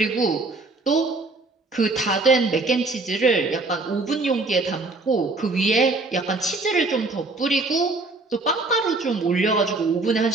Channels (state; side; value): quieter; left; 3.4 dB